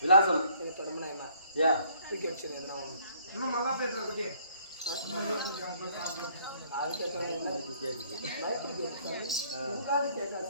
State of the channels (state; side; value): inverted; both; correlation -0.62